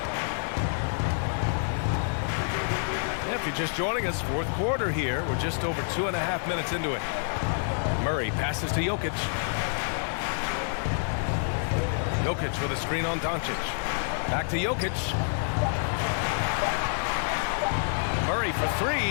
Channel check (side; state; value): right; silent; 59 dB below the other